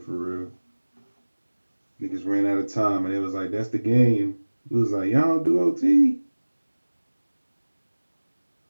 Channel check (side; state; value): both; inverted; correlation -1.00